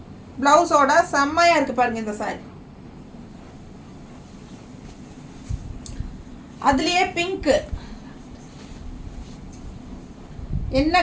ப்ளவுஸோட செம்மையாக இருக்குது பாருங்கள் இந்த சாரி. அதுலேயே பிங்க்கு, என்ன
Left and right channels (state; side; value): identical; both; correlation 1.00